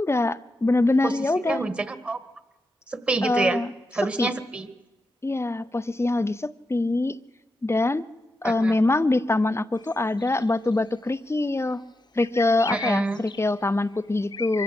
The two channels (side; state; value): both; normal; correlation 0.86